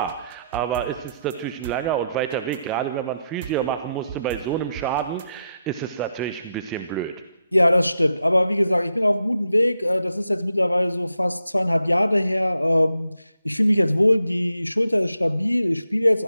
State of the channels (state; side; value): inverted; both; correlation -0.83